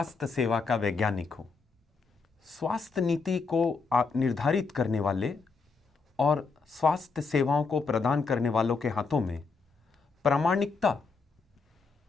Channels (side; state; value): right; quieter; 4.7 dB